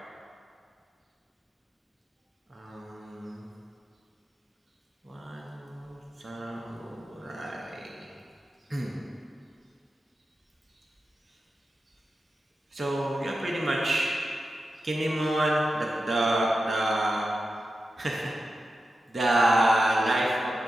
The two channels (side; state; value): both; normal; correlation 0.91